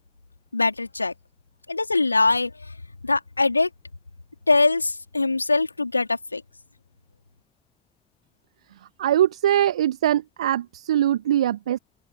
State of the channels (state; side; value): inverted; both; correlation -0.77